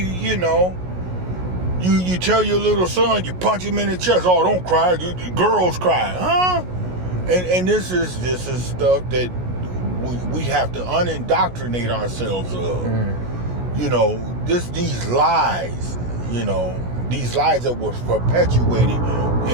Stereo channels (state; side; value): late; left; 16 ms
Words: you tell your little son, you punch him in the chest, oh, don't cry, the girls cry, huh? And this is stuff that we have to unindoctrinate ourselves of. These lies, these lies that were perpetuated